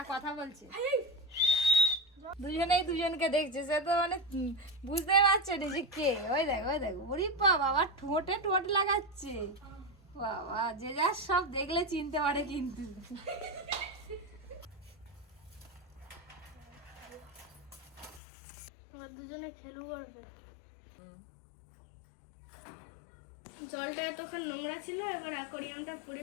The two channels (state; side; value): drops out; right; at 18.2 s